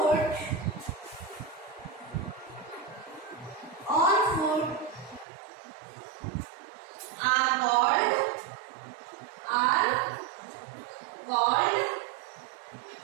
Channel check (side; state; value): left; drops out; at 5.2 s